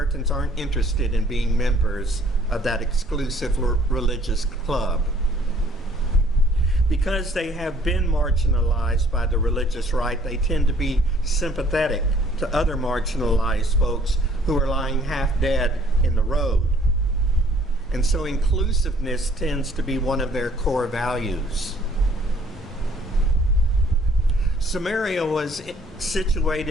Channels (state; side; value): normal; both; correlation 0.59